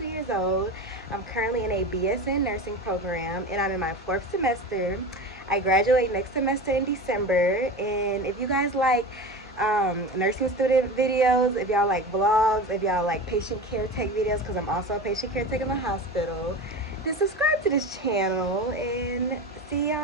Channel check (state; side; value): normal; both; correlation 0.29